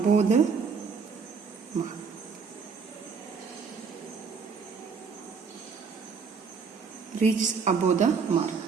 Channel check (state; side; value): quieter; left; 5.5 dB